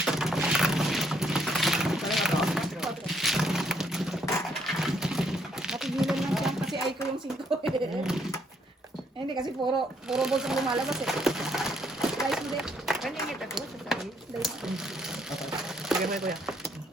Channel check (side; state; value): both; normal; correlation 0.70